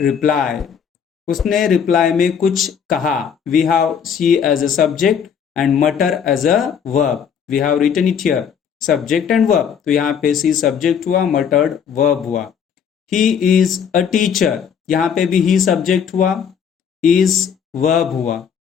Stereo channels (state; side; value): quieter; right; 7.5 dB